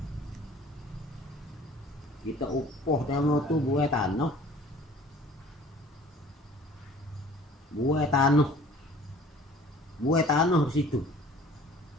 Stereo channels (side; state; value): both; normal; correlation 0.49